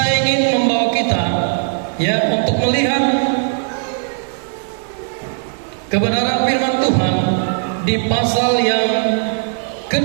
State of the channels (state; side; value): silent; left; digital silence